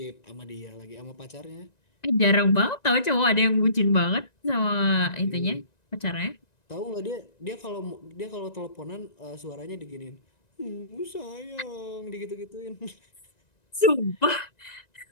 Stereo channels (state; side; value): late; right; 1.9 ms